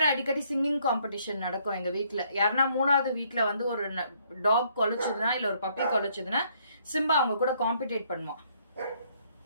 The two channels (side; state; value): both; inverted; correlation -0.67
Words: அடிக்கடி சிங்கிங் காம்படிஷன் நடக்கும் எங்க வீட்டுல. யாருன்னா மூணாவது வீட்டுல வந்து ஒரு டாக் கொலைச்சதுன்னா இல்ல ஒரு பப்பி கொலைச்சதுன்னா சிம்பா அவங்க கூட காம்படிட் பண்ணுவான்.